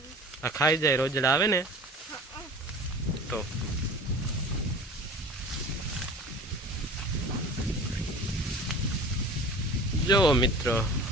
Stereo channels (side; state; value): both; normal; correlation 0.40